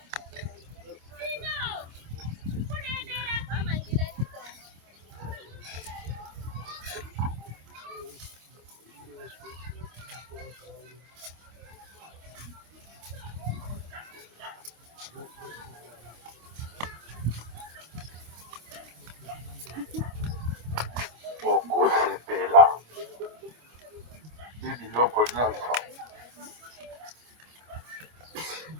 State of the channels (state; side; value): late; left; 25 ms